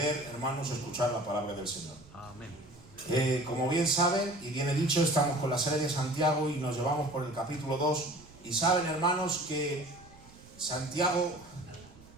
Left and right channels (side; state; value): right; noise; rumble, 23 dB below the sound